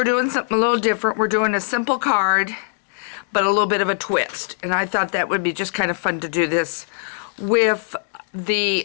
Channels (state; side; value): silent; right; digital silence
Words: doing something a little different. We're doing a simple card, but a little bit of a twist. And I thought that would be just kind of fun to do this with